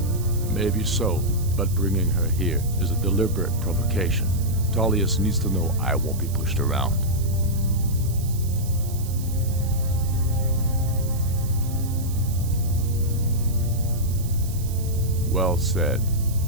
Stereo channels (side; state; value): right; noise; hiss, 15 dB below the sound